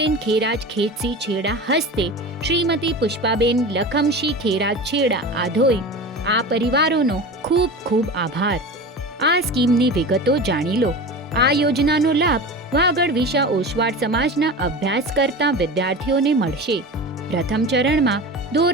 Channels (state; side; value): normal; both; correlation 0.31